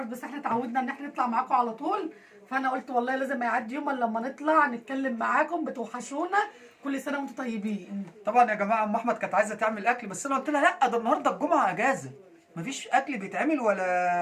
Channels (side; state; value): both; identical; correlation 1.00